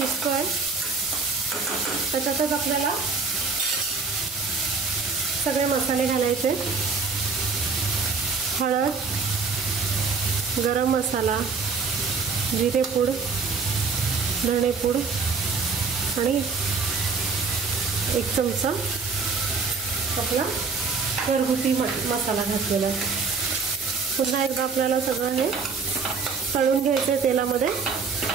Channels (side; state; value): left; quieter; 4.8 dB